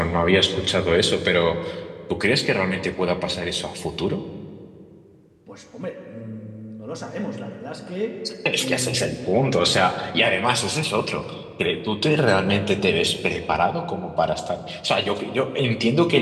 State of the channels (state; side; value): identical; both; correlation 1.00